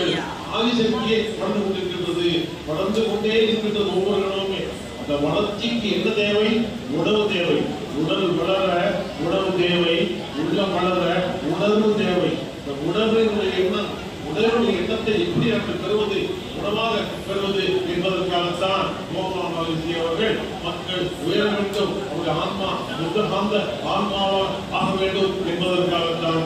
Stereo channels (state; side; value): identical; both; correlation 1.00